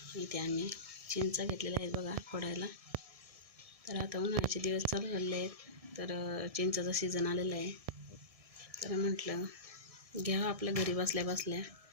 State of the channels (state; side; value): late; left; 1.7 ms